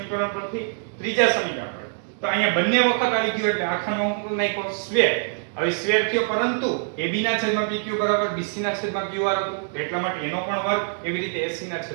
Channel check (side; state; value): left; silent; digital silence